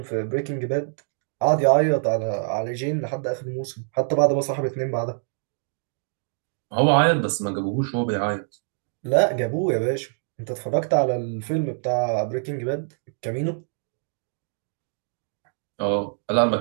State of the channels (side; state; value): left; silent; digital silence